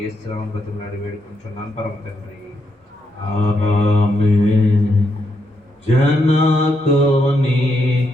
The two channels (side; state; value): both; normal; correlation 0.80